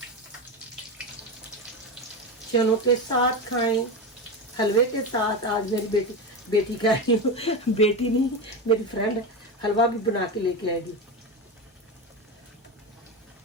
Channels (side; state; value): both; normal; correlation 0.19